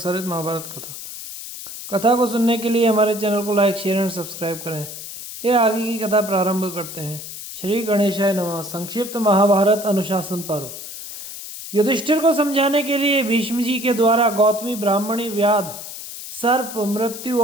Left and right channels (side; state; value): left; noise; hiss, 11 dB below the sound